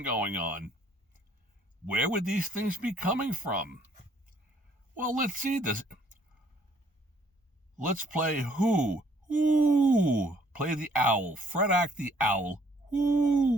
going on. Where would these things be coming from? Well, let's see this. Let's play who? Ooh, play the owl. Fred Hack the owl.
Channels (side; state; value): both; normal; correlation 0.63